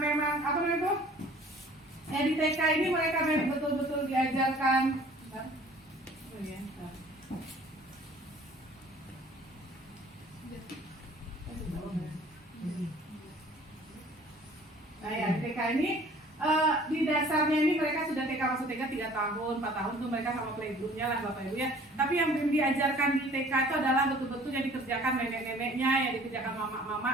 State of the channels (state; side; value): normal; both; correlation 0.52